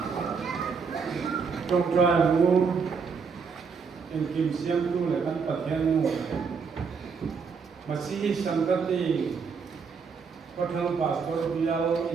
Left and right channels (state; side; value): quieter; left; 5.6 dB